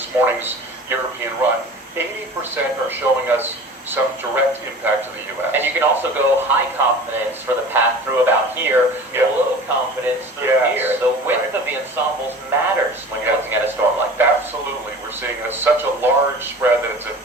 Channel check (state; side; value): normal; both; correlation 0.40